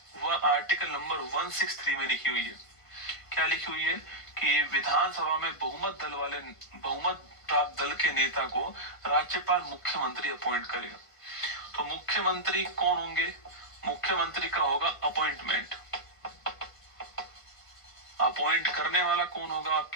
वह आर्टिकल नंबर 163 में लिखी हुई है। क्या लिखी हुई है कि विधानसभा में बहुमत प्राप्त दल के नेता को राज्यपाल मुख्यमंत्री अपॉइंट करेगा। तो मुख्यमंत्री कौन होंगे? मुख्यमंत्री का होगा अपॉइंटमेंट, अपॉइंट करने वाला कौन होगा?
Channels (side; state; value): right; late; 1.5 ms